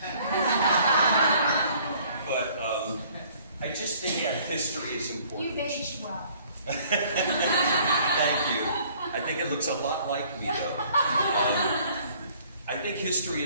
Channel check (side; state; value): both; inverted; correlation -0.57